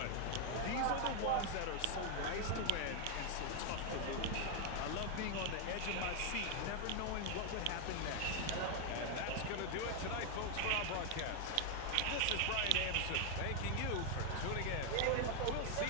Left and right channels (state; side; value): different; both; correlation 0.00